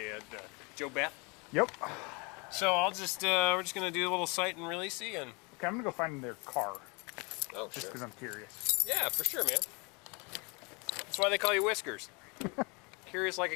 Joe Beth. Yep. So I'll just we're just gonna do a little cite and releasey and. Okay, I'm gonna go find their car Oh, just sure. because I'm curious. Yeah, for sure, man. That's why they call you Whiskers. Curious like a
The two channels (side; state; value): right; quieter; 30.2 dB